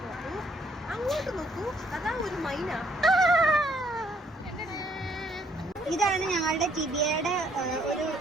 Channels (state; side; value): normal; both; correlation 0.67